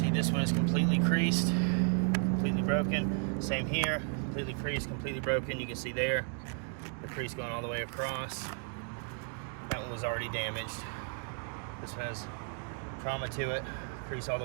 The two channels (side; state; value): left; quieter; 39.9 dB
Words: this one is completely creased, completely broken. Same here, completely creased, completely broken. You can see there, the crease going all the way across. That one was already damaged. This has trauma to it, crease all the